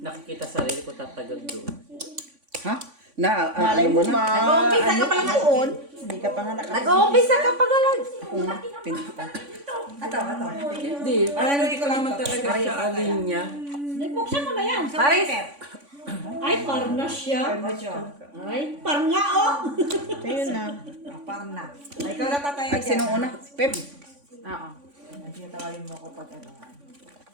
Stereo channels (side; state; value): left; late; 3.5 ms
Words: sarili ko tatagag doon. Ha? Na, Malay mo ma. Nag-uumpisa ka pa lang doon. Hindi ka pa nga nakapag. Nag-uumpisa ka pa galang. Pinta. Ato. Hindi. Hindi ko naman talaga siya alin niya. Buksan mo na yan. Paris. Ay, parna siya. Ay, parna oh. Ayun na. Parna. Ay, ikaw na tataya At sinong una? Pep. Oo. Tawagin mo ako pag ano.